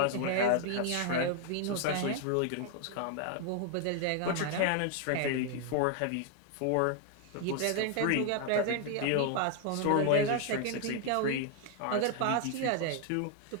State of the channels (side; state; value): both; different; correlation 0.00